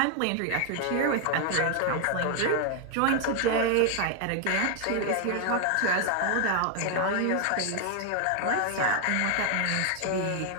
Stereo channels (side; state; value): both; different; correlation 0.00